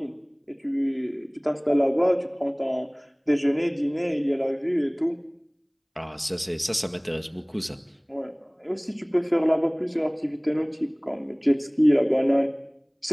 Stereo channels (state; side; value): identical; both; correlation 1.00